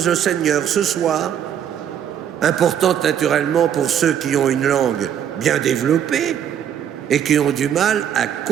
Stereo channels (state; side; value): quieter; left; 9.3 dB